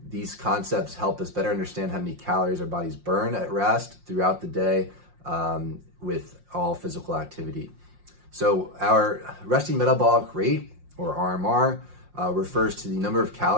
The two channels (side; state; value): left; late; 5.6 ms